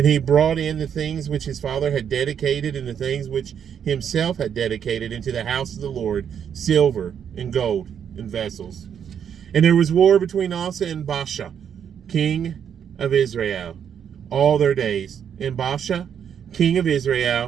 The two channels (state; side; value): quieter; left; 8.3 dB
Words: he brought in the things which his father had dedicated, and the things which himself had dedicated into the house of the Lord, silver and gold and vessels. And there was war between Asa and Baasha, king of Israel, all their days. And Baasha, king of